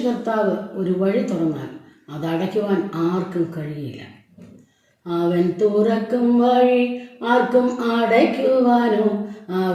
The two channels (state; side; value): identical; both; correlation 1.00